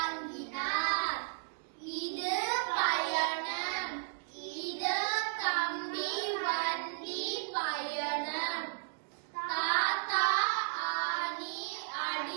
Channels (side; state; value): left; silent; digital silence